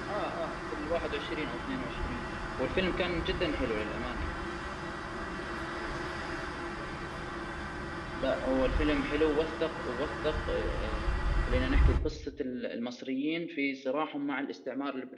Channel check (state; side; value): identical; both; correlation 1.00